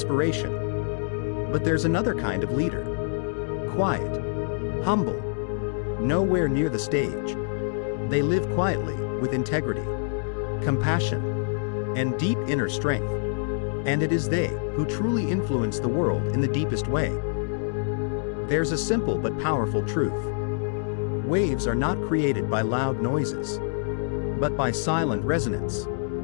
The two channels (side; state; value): right; silent; digital silence